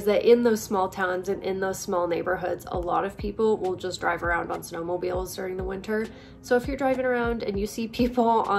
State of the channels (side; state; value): both; identical; correlation 1.00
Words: that in those small towns and in those small neighborhoods, a lot of people will just drive around on snowmobiles during the winter. So if you're driving around and you see people